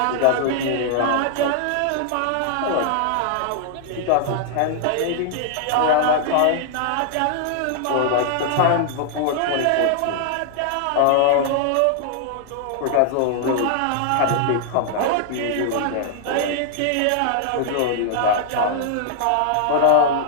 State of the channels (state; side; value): different; both; correlation -0.01